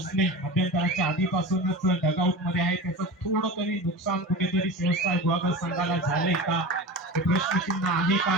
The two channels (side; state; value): both; normal; correlation 0.30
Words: मध्यंतराच्या आधीपासूनच डगआउट मध्ये आहे. त्याचं थोडं तरी नुकसान कुठेतरी सेव्हन स्टार गुहागर संघाला झालंय का हे प्रश्नचिन्ह आहे का